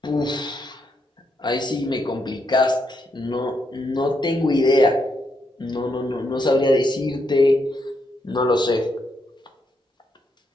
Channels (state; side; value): normal; both; correlation 0.79